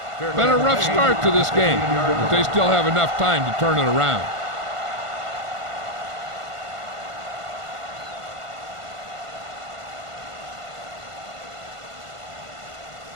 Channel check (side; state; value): left; late; 1.5 ms